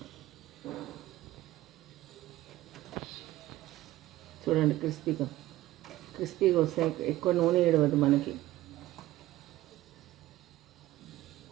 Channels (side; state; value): left; quieter; 16.1 dB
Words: చూడండి క్రిస్పీగా వస్తాయి. ఎక్కువ నూనె ఏడవద్దు మనకి.